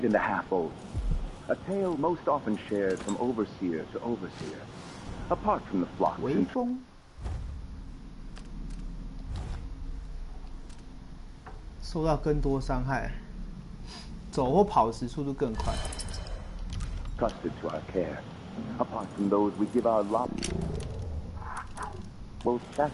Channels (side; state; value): both; identical; correlation 1.00